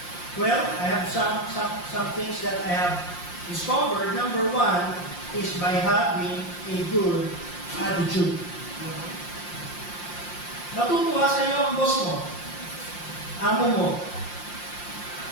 Well, I have some things that I have discovered. Number 1 is by having a good attitude. Matutuwa sa iyo ang boss mo, amo mo,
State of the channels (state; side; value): late; right; 5.7 ms